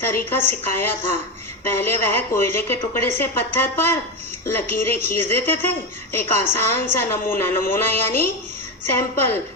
तरीका सिखाया था। पहले वह कोयले के टुकड़े से पत्थर पर लकीरें खींच देते थे, एक आसान सा नमूना यानी सैंपल,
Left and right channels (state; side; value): normal; both; correlation 0.15